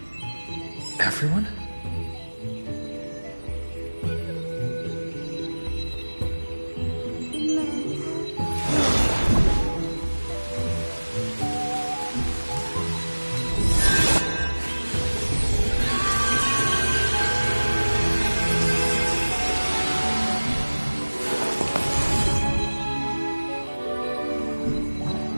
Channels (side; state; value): both; inverted; correlation -1.00